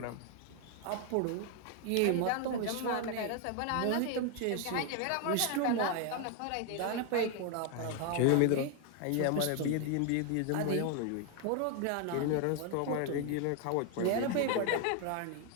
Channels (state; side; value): different; both; correlation 0.01